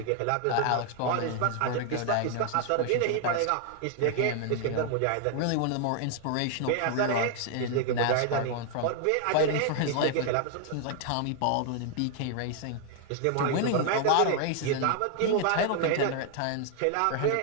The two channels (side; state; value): both; different; correlation 0.00